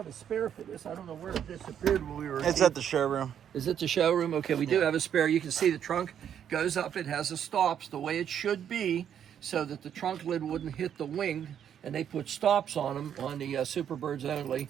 a spare for this. I don't know where it disappeared when we were. It's at the showroom. Is it the showroom? Okay, we do have a spare. You can see the trunk goes up. It has the stops the way it should be, so that the trunk lid wouldn't hit the wing. And they put stops on them on the Superbirds only.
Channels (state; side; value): quieter; left; 9.1 dB